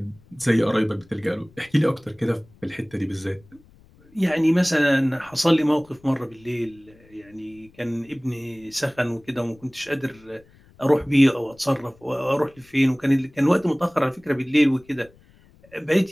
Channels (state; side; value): noise; left; rumble, 28 dB below the sound